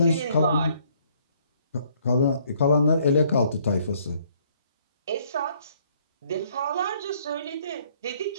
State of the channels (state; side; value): inverted; both; correlation -0.64